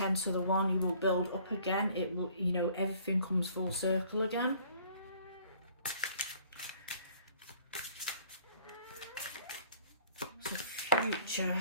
to the 1, you will build up again. It will, you know, everything comes full circle again. So future,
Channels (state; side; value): inverted; both; correlation -0.57